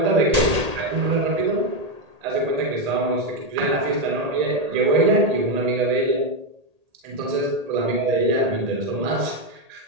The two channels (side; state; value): left; late; 1.8 ms